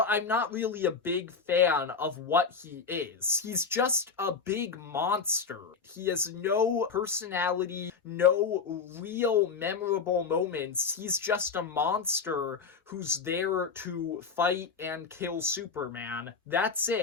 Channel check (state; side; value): quieter; right; 5.3 dB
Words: I'm not really a big fan of what he is. He's just a big monster. He has no personality, no real memorable moments. He's just a monster who's there to fight and kill Superman. That's